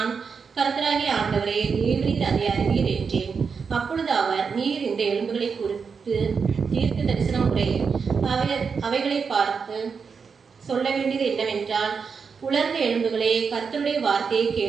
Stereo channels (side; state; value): left; quieter; 5.7 dB